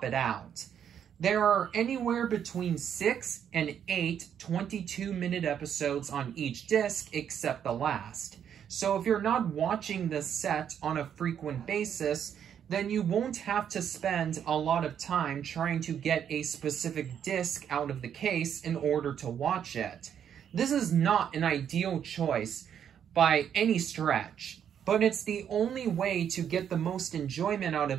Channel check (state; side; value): quieter; left; 8.8 dB